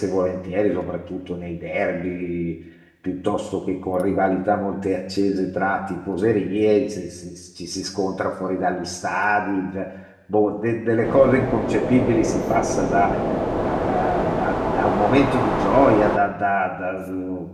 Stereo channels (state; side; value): identical; both; correlation 1.00